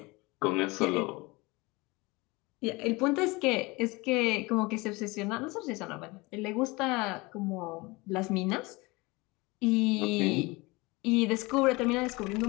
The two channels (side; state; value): right; quieter; 24.1 dB